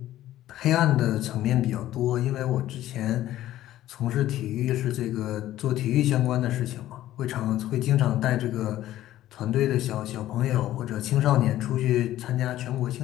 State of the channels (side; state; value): right; quieter; 13.8 dB